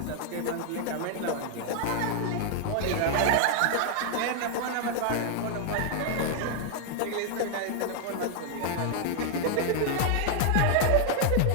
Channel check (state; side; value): different; both; correlation 0.00